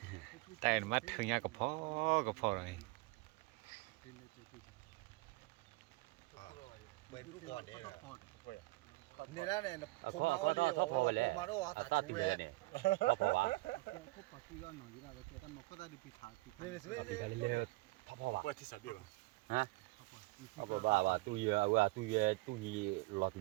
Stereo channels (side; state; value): left; quieter; 22.5 dB